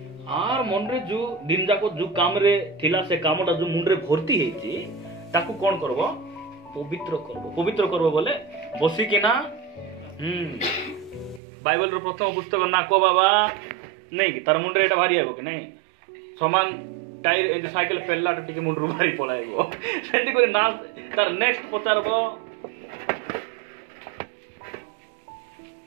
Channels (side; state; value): left; drops out; at 11.4 s